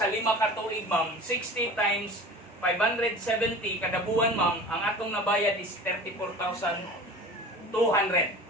5 ka tuig, ma'am, 60 times 570 kada buwan, ma'am, ang atong nabayad is 34,200.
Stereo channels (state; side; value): normal; both; correlation 0.38